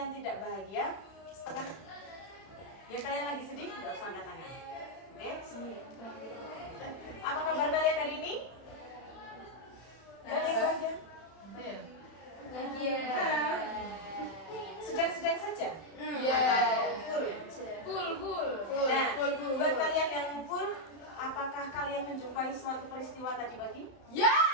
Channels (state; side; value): late; right; 32 ms